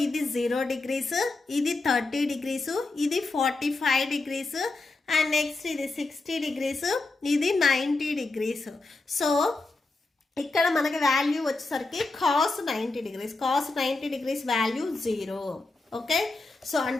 ఇది 0 degrees, ఇది 30 degrees, ఇది 45 degrees అండ్ నెక్స్ట్ ఇది 60 degrees, ఇది 90 degrees. సో ఇక్కడ మనకి వాల్యూ వచ్చేసరికి cos 90 degrees. cos 90 degrees value 0. Okay, so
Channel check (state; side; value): quieter; right; 3.4 dB